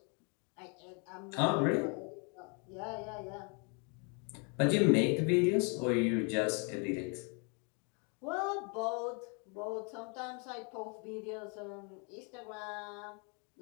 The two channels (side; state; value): right; quieter; 35.7 dB